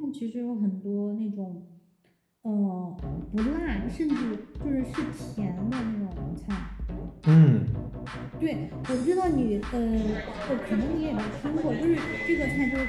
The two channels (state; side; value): identical; both; correlation 1.00